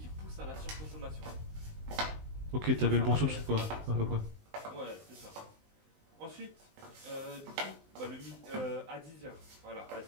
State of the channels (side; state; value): left; late; 19 ms